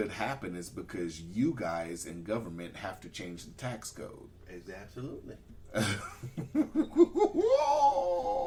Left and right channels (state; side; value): identical; both; correlation 1.00